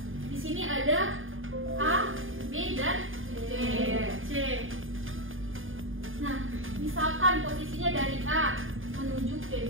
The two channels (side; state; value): left; late; 0.59 ms